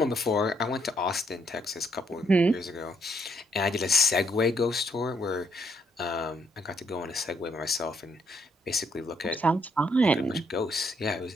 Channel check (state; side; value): normal; both; correlation 0.73